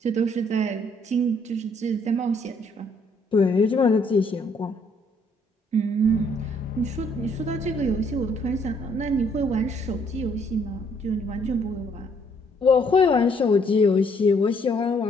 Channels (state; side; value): normal; both; correlation 0.67